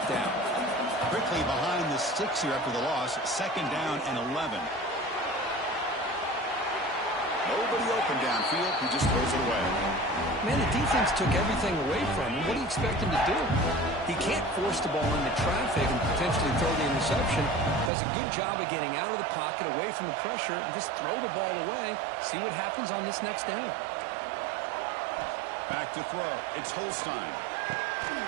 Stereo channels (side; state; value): left; drops out; at 17.9 s